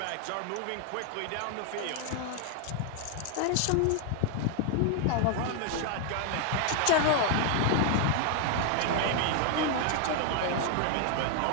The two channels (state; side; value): different; both; correlation 0.00